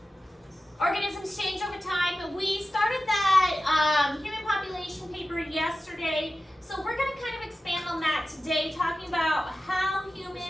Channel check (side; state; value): both; normal; correlation 0.94